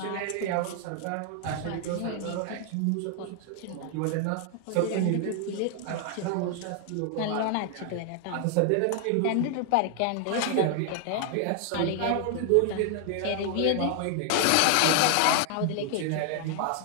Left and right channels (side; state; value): both; different; correlation 0.00